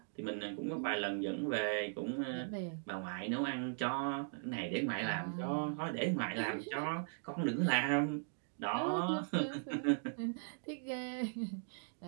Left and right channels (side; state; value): left; silent; digital silence